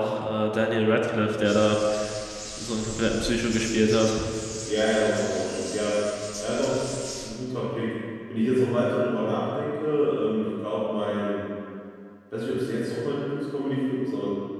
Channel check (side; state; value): both; identical; correlation 1.00